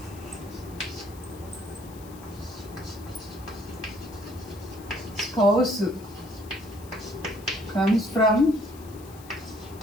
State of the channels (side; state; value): left; noise; hiss, 21 dB below the sound